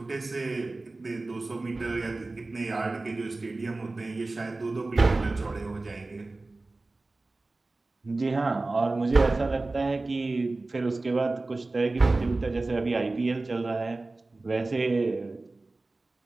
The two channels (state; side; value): quieter; left; 3.2 dB